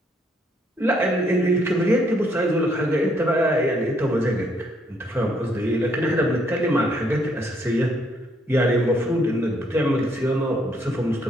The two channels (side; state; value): both; normal; correlation 0.70